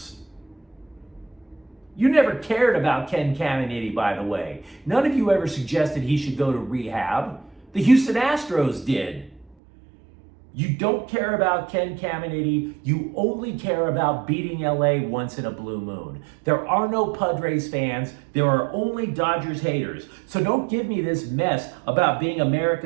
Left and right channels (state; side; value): drops out; left; at 9.6 s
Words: You never cared about Ken Caminiti, by the way. None of you ever suggested he should go to rehab. The Houston Astros did. You don't care about Ken Caminiti. You only care about beating LA once in a blue moon. There are no Padres fans. There are only Dodgers haters. So don't give me this mess about being